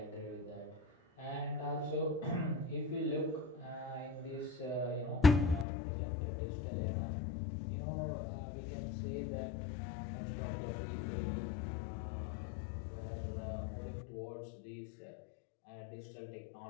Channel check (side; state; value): right; drops out; at 5.7 s